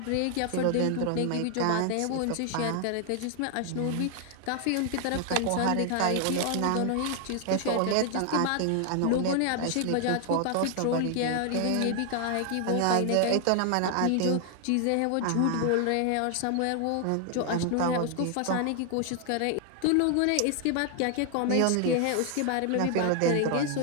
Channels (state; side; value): different; both; correlation 0.00